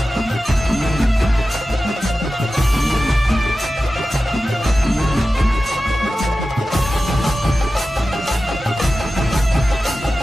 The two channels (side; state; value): both; normal; correlation 0.94